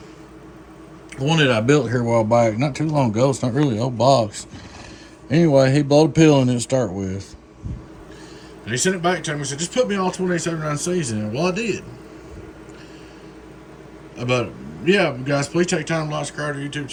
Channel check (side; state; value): both; identical; correlation 1.00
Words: one that I built here a while back, not too long ago. It's not really an old box. Anyway, he blowed a pill in it to start with. And he sent it back to me and said, just put me all 2879Cs in it. Well, I did. But yeah, guys, please take time to like and subscribe to our YouTube